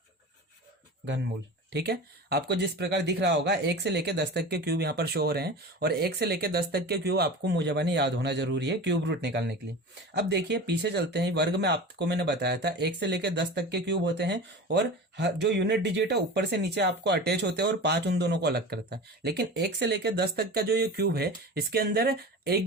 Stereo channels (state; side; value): normal; both; correlation 0.32